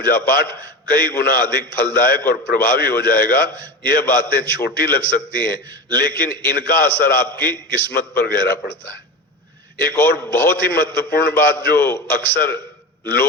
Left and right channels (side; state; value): both; normal; correlation 0.25